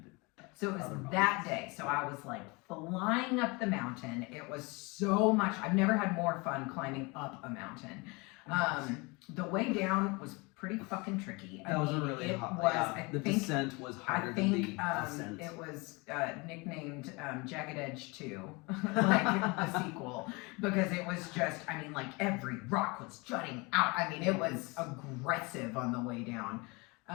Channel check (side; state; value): right; quieter; 26.9 dB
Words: it. So it was that day. So I was like flying up the mountain. It was so much. I've never had more fun climbing up a mountain. The way down was pretty fucking tricky. That was a really hot. Yeah, the descent was harder than the ascent. It was nicknamed Jagged Edge 2, like the sequel, because it was just, I mean, like every rock was jutting out. I mean, it was aggressive on the way down.